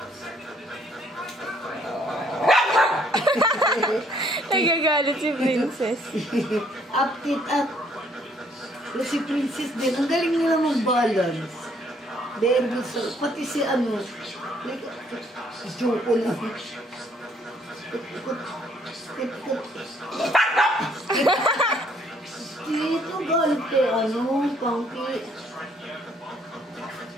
Nagagalit si Princess. Up, tit up. Si Princess din. Ang galing nila mag-balance. Very good. So, pati si ano. Si Choco lang. Dito galit kay ano, Punky.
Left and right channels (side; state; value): both; normal; correlation 0.65